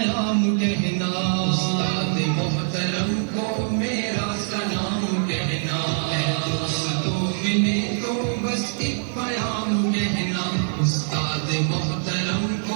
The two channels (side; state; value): left; silent; digital silence